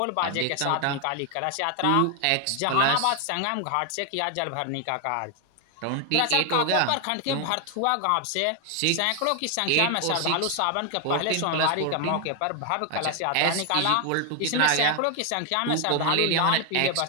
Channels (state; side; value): different; both; correlation 0.00